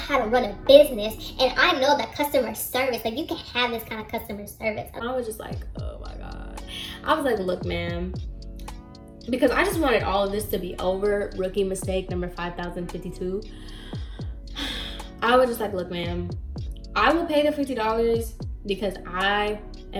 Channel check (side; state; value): both; identical; correlation 1.00